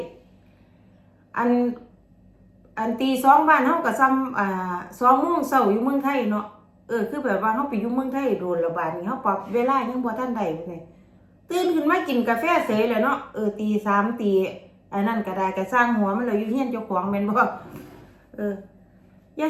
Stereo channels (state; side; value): identical; both; correlation 1.00